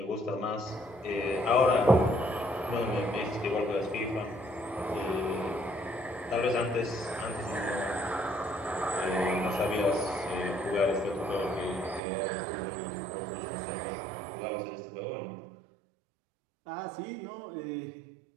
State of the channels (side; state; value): left; drops out; at 12.0 s